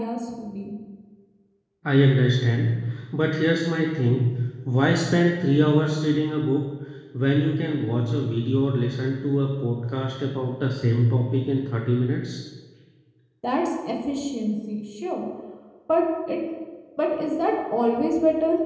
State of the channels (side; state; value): both; identical; correlation 1.00